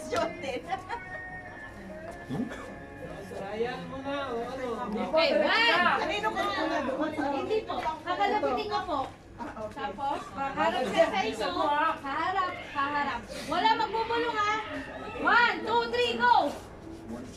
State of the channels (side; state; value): both; identical; correlation 1.00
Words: din. Ayan mo na, Okay, one. Kanino ka muna doon? Hindi po. Kakalapitin ko po. Tapos, harap ka sa inyo. Haharap. Wala magbubulong ha. 1, 2, 3, go!